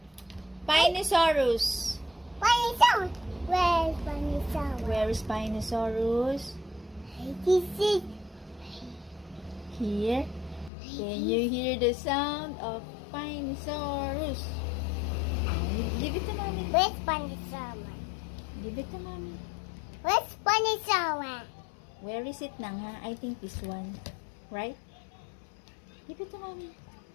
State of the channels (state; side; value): drops out; right; at 10.7 s